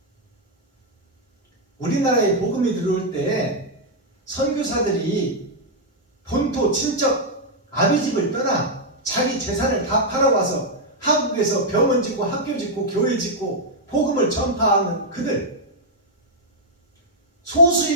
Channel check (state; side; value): normal; both; correlation -0.03